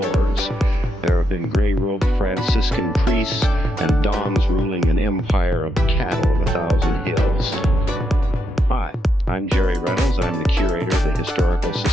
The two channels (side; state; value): both; normal; correlation 0.81